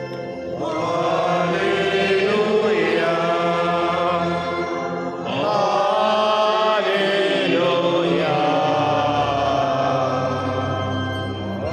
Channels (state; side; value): identical; both; correlation 1.00